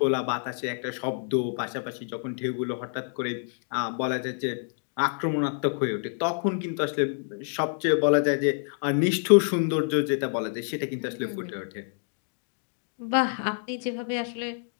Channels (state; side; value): silent; right; 60 dB below the other